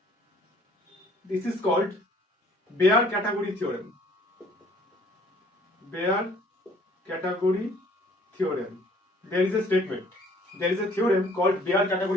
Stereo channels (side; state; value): both; normal; correlation 0.57